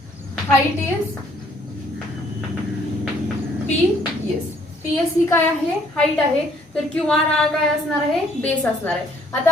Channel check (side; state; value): both; normal; correlation 0.63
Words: height is PS ही काय आहे, हाईट आहे। तर QR हा काय असणार आहे, बेस असणार आहे। आता